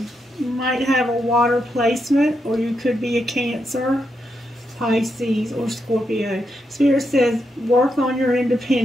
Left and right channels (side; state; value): both; normal; correlation 0.83